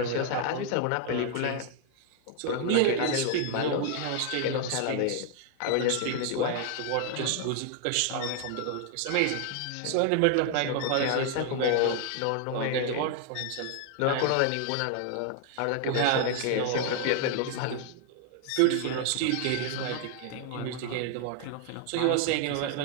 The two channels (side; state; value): both; different; correlation 0.00